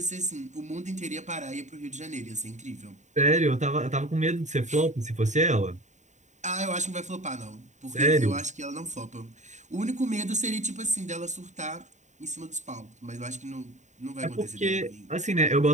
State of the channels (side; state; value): left; late; 0.34 ms